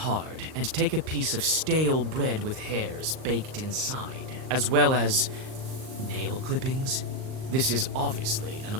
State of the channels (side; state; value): left; late; 38 ms